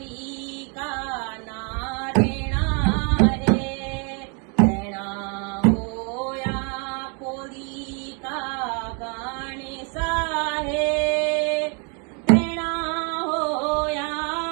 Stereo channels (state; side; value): quieter; left; 36.0 dB